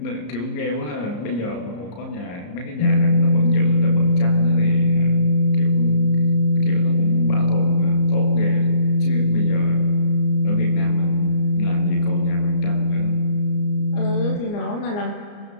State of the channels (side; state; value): right; late; 34 ms